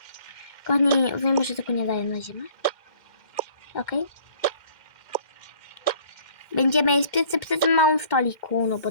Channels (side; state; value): right; late; 2.1 ms